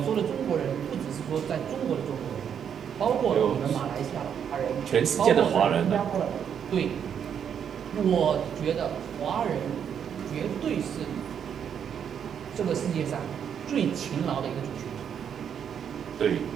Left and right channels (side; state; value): left; quieter; 8.2 dB